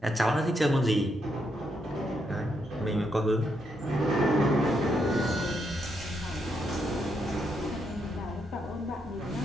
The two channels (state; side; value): normal; both; correlation 0.79